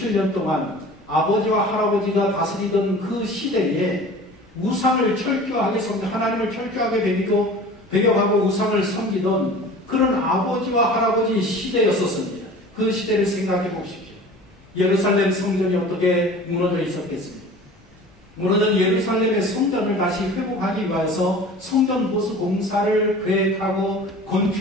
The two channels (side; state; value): both; normal; correlation 0.41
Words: 동안 아버지와 할아버지가 다스리던 그 시대에 우상을 철저하게 섬기고 하나님을 철저하게 배격하고 우상을 섬기던 그런 아버지와 할아버지 시대였었습니다. 그 시대를 생각해 보십시오. 예루살렘 성전이 어떻게 무너져 있었겠습니까? 무너진 예루살렘의 성전을 다시 회복하기 위해서 성전 보수 공사를 계획하고